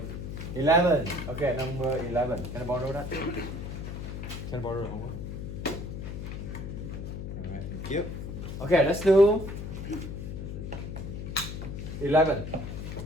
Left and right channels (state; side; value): noise; left; hum, 6 dB below the sound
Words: 11. Okay, number 11. Can I borrow that? Can I borrow the homework? Alright, thank you. Okay, let's do 11.